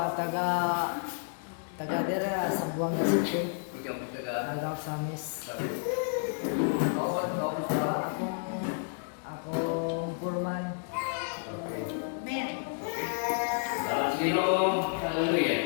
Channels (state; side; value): silent; right; digital silence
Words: taga dira sa Buanga City. Ikaw mo taga. Taga sa Miss. Kauman sa. Akong puluhan. Okay. Men. Dalam Ginoo,